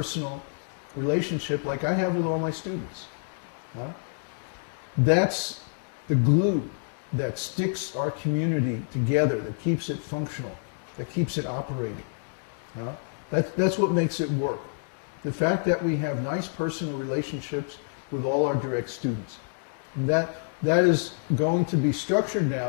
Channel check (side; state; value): right; silent; digital silence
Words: relationship like I have with all my students. That's the glue that sticks our community together, that keeps it functional, that keeps it operating. That's what makes it work. The fact that we have nice personal relationships with all our direct students. And that is going to be structured